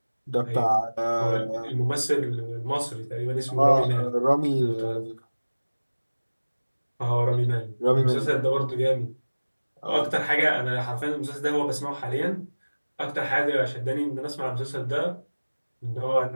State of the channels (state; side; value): inverted; both; correlation -1.00